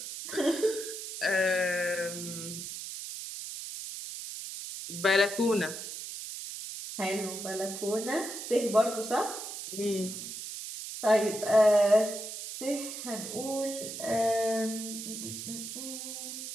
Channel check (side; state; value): right; noise; hiss, 8 dB below the sound